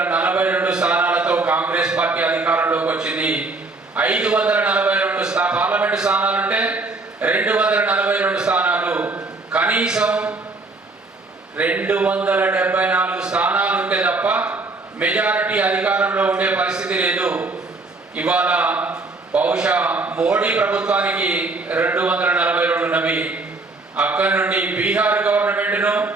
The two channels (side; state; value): left; quieter; 3.5 dB